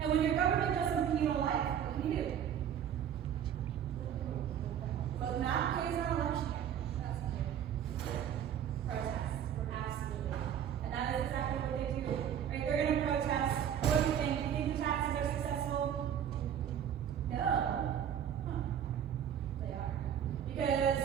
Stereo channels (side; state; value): left; quieter; 9.3 dB